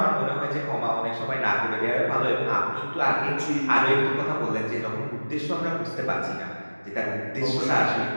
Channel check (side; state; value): both; inverted; correlation -1.00